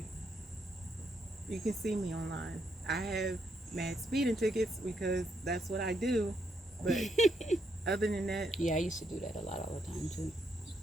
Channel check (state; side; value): normal; both; correlation 0.77